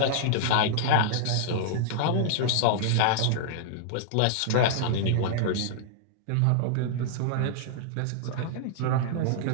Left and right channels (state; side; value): different; both; correlation -0.01